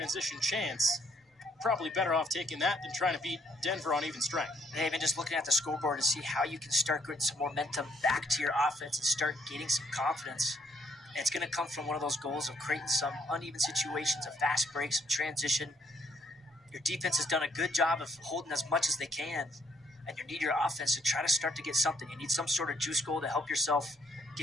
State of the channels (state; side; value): normal; both; correlation 0.68